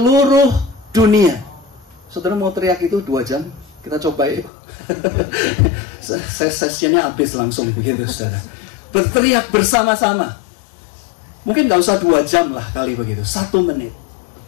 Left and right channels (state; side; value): drops out; right; at 4.5 s